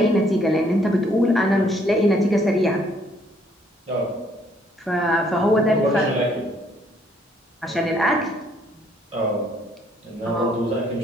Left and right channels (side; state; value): both; normal; correlation 0.66